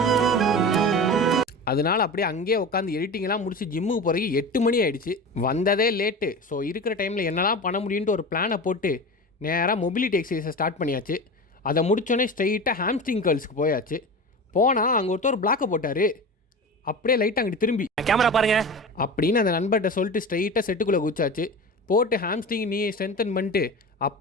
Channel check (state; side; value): normal; both; correlation 0.30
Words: அதனால் அப்படியே அங்கேயே உட்காந்து எடிட்டிங்கெல்லாம் முடிச்சு ஜிம்முக்கு போகிறதுக்கு 8 மணி ஆகிடுச்சு. வந்ததே லேட்டு. ஸோ இருக்கிற டைமில் என்னெல்லாம் பண்ண முடியுன்ட்டு ஒரு பிளானை போட்டு நேராக மொபிலிட்டி எக்ஸசைஸை ஸ்டார்ட் பண்ணியாச்சு. அதை முடித்தோடனே ஸ்ட்ரெயிட்டாக ஹாம்ஸ்ட்ரிங் கேர்ள்ஸ்க்கு போயாச்சு. போனால் அங்கே ஒருத்தர் பிளாக்கை போட்டார். அப்படியே லைட்டாக அங்கிட்டு திரும்பி கேமரா பாருங்க அப்படின்னு அந்த நண்பர்கிட்ட சொல்லிட்டு ஸ்ட்ரெயிட்டாக செட்டுக்குள்ளே குச்சாச்சு. போட்டு ஹாம்ஸ்ட்ரிங் நீ ஸ்ட்ரென்தன் பண்ணிட்டு